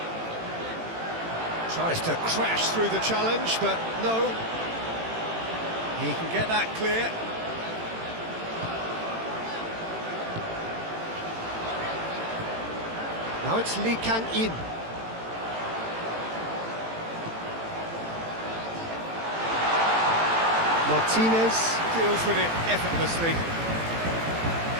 Tries to crash through the challenge, but no. He can get that clear. Now it's Lee Kang-in. Martinez deals with it effortlessly.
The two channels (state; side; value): late; left; 18 ms